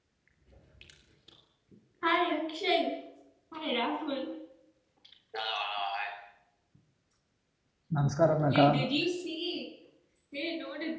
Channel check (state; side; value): identical; both; correlation 1.00